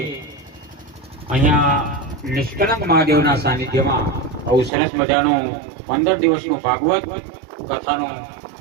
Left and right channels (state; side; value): drops out; left; at 4.7 s